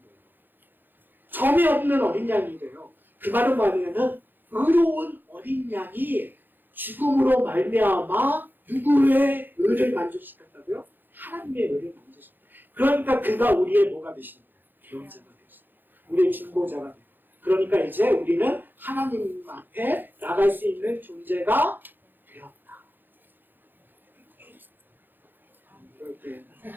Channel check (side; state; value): left; late; 0.092 ms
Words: 점이 없는 어린 양이래요. 그 말은 뭐냐면 의로운 어린 양이 죽음으로 말미암아 누구의 의를 만족시켰다고요? 하나님의 의를 만족시켰다. 그러니까 그가 우리의 뭐가 되시는 거예요? 구원자가 되셨어요. 우리의 중보자가 돼요. 그러니까 이제 우리는 하나님 앞에 나갈 수 있는 존재가 되었다.